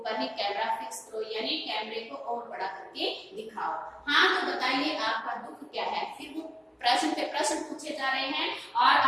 ही कैमरा फिक्स करो, यानी कैमरे को और बड़ा करके दिखाओ। हाँ तो बताइए आपका दुख क्या है? फिर वो प्रश्न पे प्रश्न पूछे जा रहे हैं और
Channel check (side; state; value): both; identical; correlation 1.00